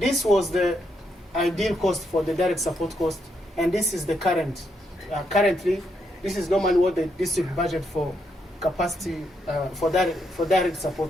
was the ideal cost for the direct support cost, and this is the current. Currently, this is normally what the district budget for capacity for direct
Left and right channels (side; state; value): both; normal; correlation 0.79